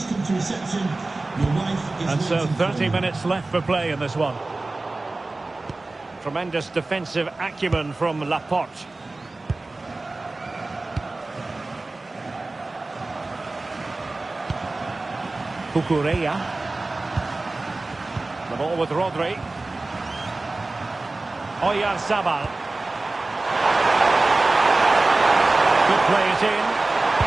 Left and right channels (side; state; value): left; quieter; 3.2 dB